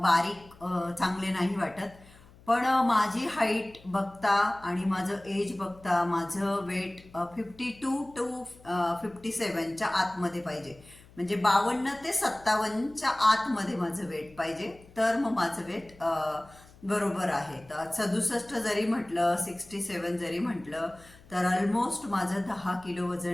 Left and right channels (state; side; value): noise; left; hum, 24 dB below the sound